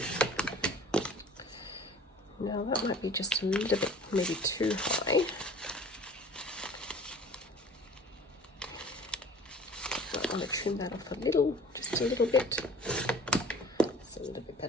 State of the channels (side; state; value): both; normal; correlation 0.46